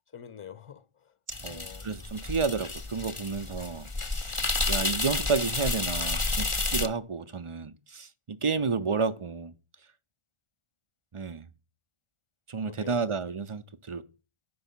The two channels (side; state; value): left; late; 1.4 ms